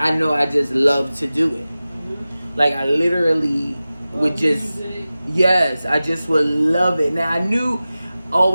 know I just love to do it. Like I literally would just, yes, I just would love it. Now I knew,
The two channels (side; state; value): both; inverted; correlation -0.96